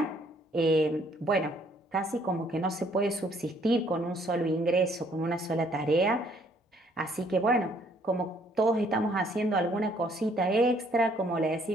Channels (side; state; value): both; normal; correlation 0.64